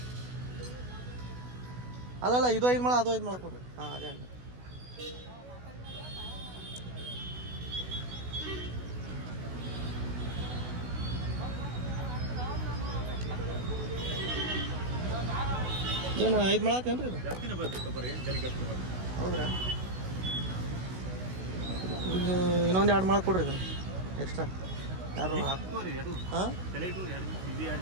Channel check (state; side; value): late; left; 16 ms